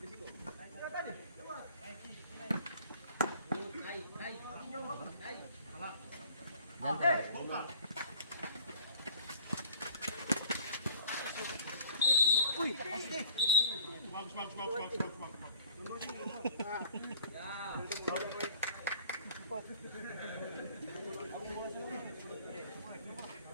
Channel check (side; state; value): both; inverted; correlation -0.55